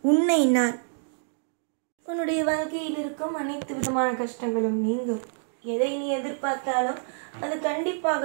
உன்னை நான் உன்னுடைய வாழ்க்கையில் இருக்கும் அனைத்து விதமான கஷ்டங்களும் நீங்கும். எதை நீ எதிர்பார்த்தாலும் அது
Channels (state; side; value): silent; left; digital silence